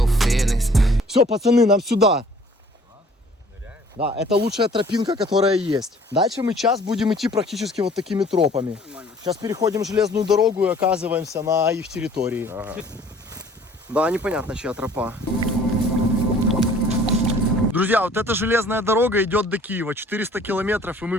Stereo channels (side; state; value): both; normal; correlation 0.54